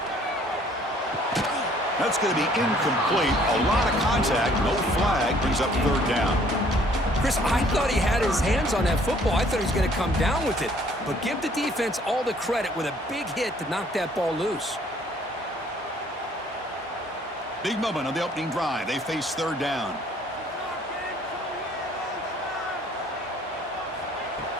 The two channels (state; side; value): normal; both; correlation 0.60